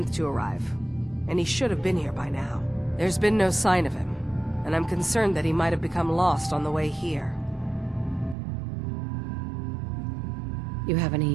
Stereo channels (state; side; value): drops out; left; at 8.3 s